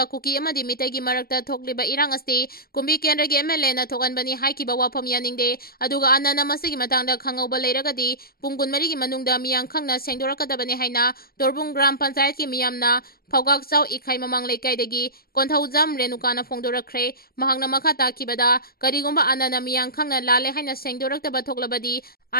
Kuki amadi mitai gi marakta thokliba irang asti kumbi kendra gi MLA na thokanbani haikiba wafam yaningde aduga anana masigi matangda khangauba leiragadi pung kunmari gi manungda miyang khangna sengdorakadabani haina Torbung Gram Panchayat ki miyamna Phawgak Chau Ikhai Mamang Leikaidagi Konthaujam Renukana Phongdorakre mahangna makha takibada karigomba anana miyang khangna lale haina sengdoraktaba thoklabadi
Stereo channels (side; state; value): right; late; 0.44 ms